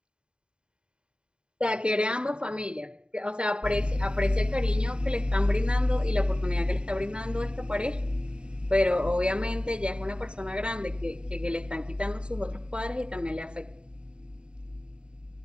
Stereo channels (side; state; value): left; late; 0.051 ms